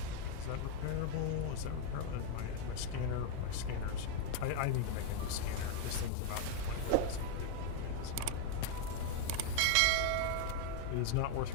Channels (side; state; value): both; different; correlation 0.01